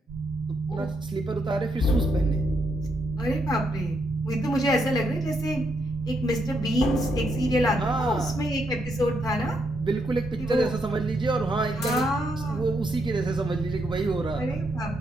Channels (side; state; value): both; normal; correlation 0.78